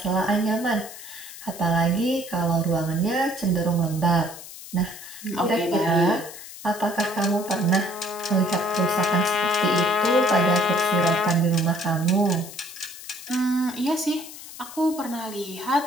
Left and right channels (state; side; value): noise; left; hiss, 14 dB below the sound